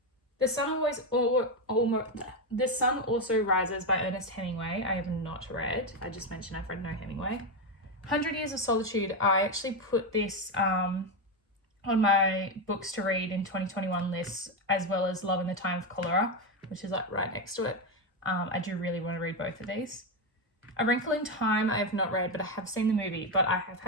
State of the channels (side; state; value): both; normal; correlation 0.09